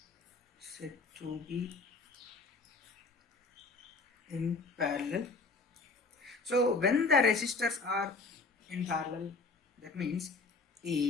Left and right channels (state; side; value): quieter; right; 3.9 dB